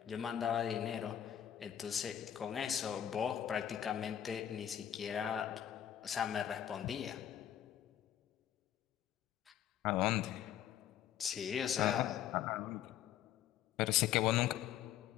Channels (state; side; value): quieter; right; 10.5 dB